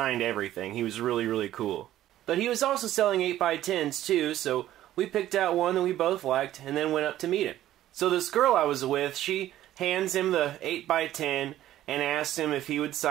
everything. He was really, really cool. But he was also selling 8x10s too, so we picked out one that we both liked and then went up to meet him. So this girl I was with, she hands him the 8x10 and asks him if he would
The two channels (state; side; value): quieter; left; 13.3 dB